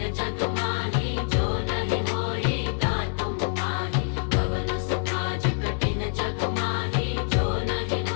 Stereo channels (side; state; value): right; silent; 61 dB below the other